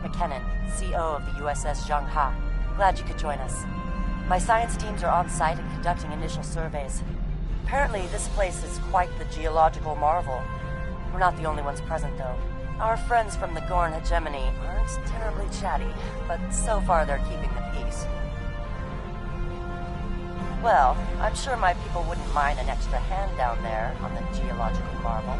McKinnon, CO of the USS Zhangha. Glad you could join us. My science teams are on site and conducting initial surveys. Apparently, this place is quite the geological marvel. We're not the only ones present, though. Our friends from the Gorn hegemony aren't terribly chatty, but so far they're keeping the peace. Well, I'm sure my people wouldn't mind an extra hand down there on the geological marvel.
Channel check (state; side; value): identical; both; correlation 1.00